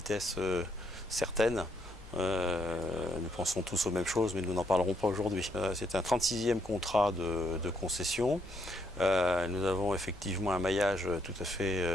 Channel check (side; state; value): both; normal; correlation 0.74